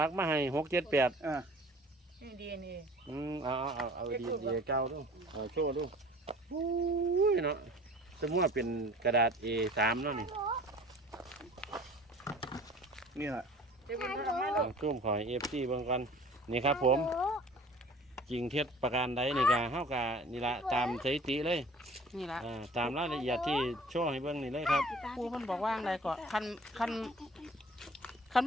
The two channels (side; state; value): both; normal; correlation 0.47